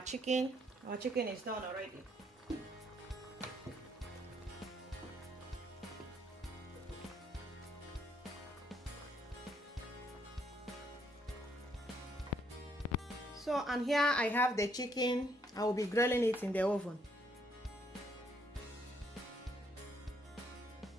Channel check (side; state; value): both; normal; correlation 0.70